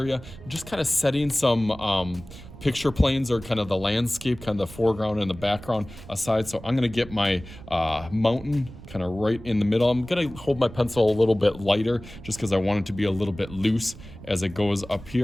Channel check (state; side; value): noise; right; rumble, 16 dB below the sound